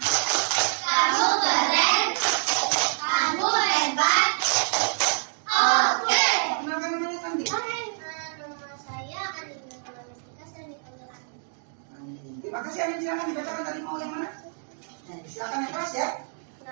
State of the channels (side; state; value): left; silent; digital silence